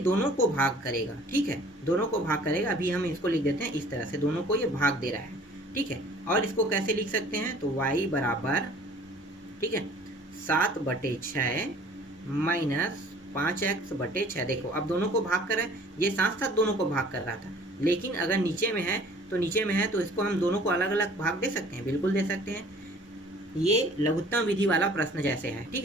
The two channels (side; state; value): both; normal; correlation 0.51